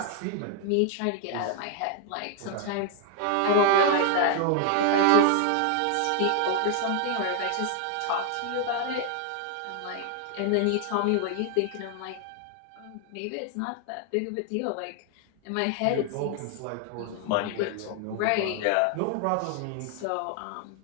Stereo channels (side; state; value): both; different; correlation 0.00